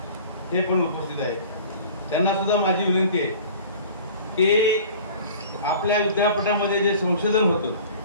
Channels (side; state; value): both; inverted; correlation -0.44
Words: हे पण उपस्थित आहेत. त्यांना सुद्धा माझी विनंती आहे की आपल्या विद्यापीठामध्ये जे संशोधन होतं,